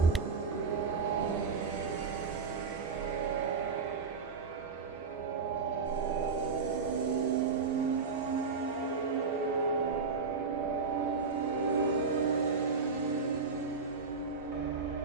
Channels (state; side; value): quieter; left; 4.9 dB